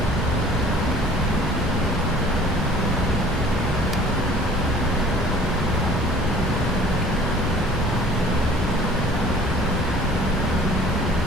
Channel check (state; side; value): normal; both; correlation 0.50